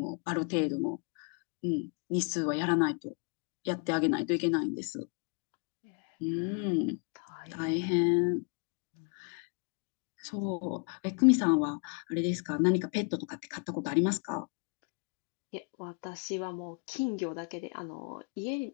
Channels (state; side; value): quieter; right; 37.2 dB